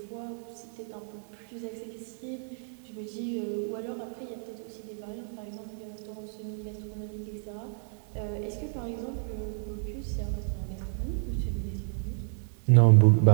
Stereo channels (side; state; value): left; silent; digital silence